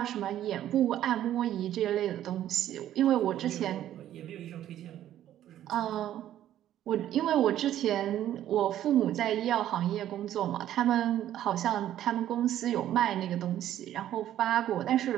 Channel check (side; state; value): left; quieter; 12.0 dB